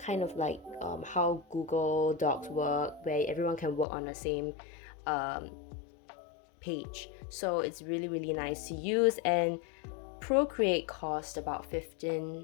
of like how Google Docs work, where everyone can work on the same page. So it's really, really nice to use. And Procreate cost about 15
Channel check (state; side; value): drops out; right; at 3.9 s